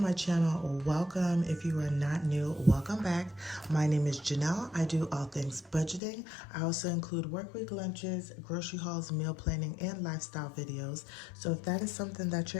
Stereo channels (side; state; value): right; drops out; at 6.0 s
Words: channel, welcome. If you are not new, welcome back. My name is Janelle. I do all things budgeting. I also include workweek lunches, grocery hauls, meal planning, and lifestyle videos. So if that is something that